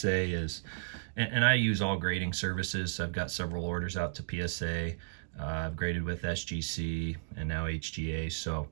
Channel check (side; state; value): left; silent; digital silence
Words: is, and I use all grading services. I've got several orders out to PSA. I've graded with SGC and now HGA. So,